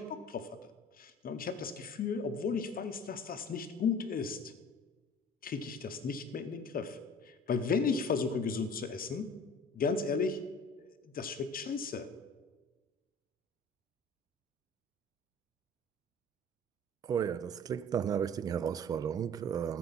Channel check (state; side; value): normal; both; correlation 0.44